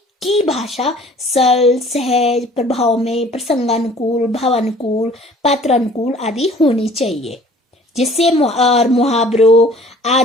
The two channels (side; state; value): both; normal; correlation 0.51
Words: की भाषा सरल, सहज, प्रभाव में प्रसंगानुकूल, भावानुकूल, पात्रानुकूल आदि होनी चाहिए, जिससे मुहावरों